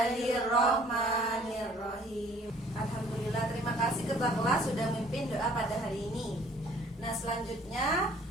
Alhamdulillah, terima kasih ketua kelas sudah memimpin doa pada hari ini. Nah, selanjutnya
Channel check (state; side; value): normal; both; correlation 0.56